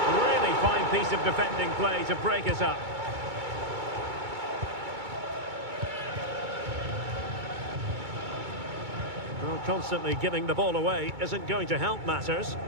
Really fine piece of defending play to break us up. Well, constantly giving the ball away isn't going to help matters.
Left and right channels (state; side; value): late; left; 2.2 ms